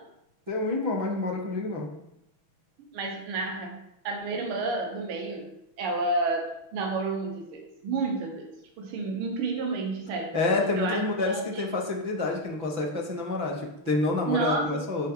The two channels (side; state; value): left; late; 6.0 ms